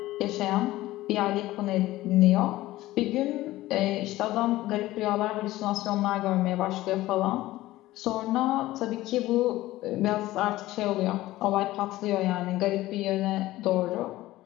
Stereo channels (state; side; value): quieter; right; 16.7 dB